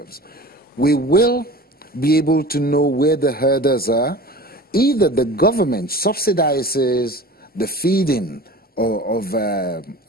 we will be able to know where the herders are. Either the government subsidizes the feeding of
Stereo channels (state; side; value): normal; both; correlation 0.38